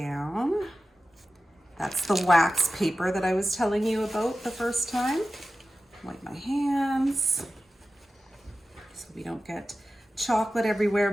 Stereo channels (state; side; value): normal; both; correlation 0.94